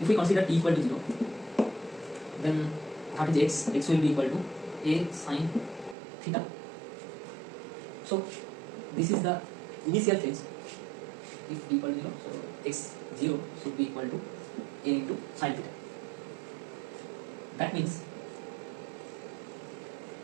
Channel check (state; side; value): drops out; left; at 6.0 s